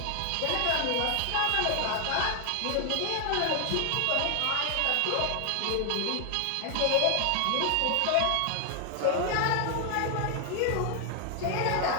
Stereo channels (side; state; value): both; different; correlation 0.00